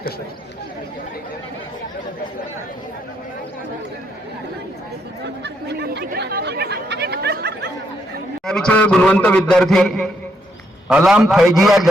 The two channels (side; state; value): both; normal; correlation 0.76